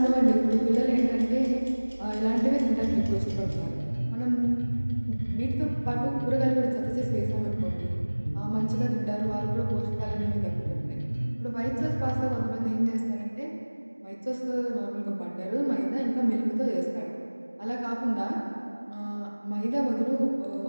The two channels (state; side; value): inverted; both; correlation -1.00